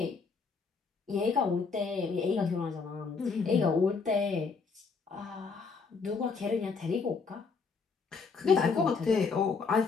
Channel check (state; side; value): quieter; right; 4.9 dB